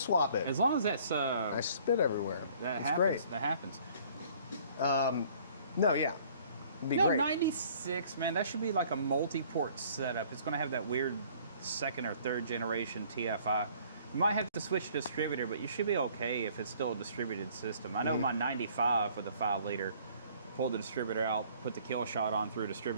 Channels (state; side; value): inverted; both; correlation -0.56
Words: swap it. As long as that's I spit everywhere. that It's happens. great. That happens. No, yeah. It'd be No, great. 96, man. That should be like a multi-port setup. It's going to have that weird second or third generation TFI. You might have to switch to distributor, but you should be okay if it's still a distributed system. I know my 95 with a 5-liter, pulled the distributor out, put the Killshot on, threw a